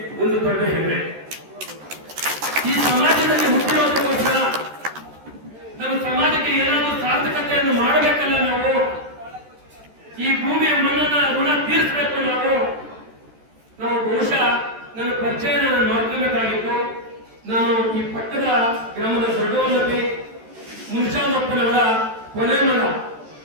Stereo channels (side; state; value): left; late; 13 ms